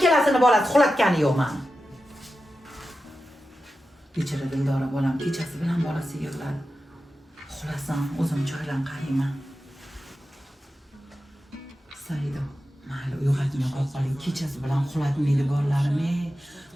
bolasi uxlatgani yo'q meni. Kechira Dildora bolam kechasi bilan bolasi yig'ladi. Uxlasam o'zim choylan qarayman. Saida, mayli uyg'otmay qo'ying. Kechasi bilan uxlatmaydi bolalarim.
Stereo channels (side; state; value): both; normal; correlation 0.92